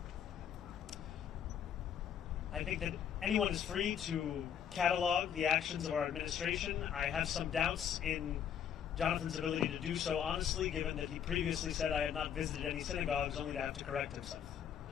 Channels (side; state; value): right; quieter; 8.7 dB